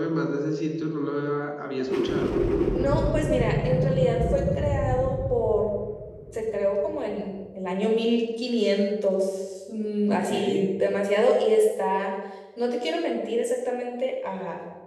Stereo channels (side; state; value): both; identical; correlation 1.00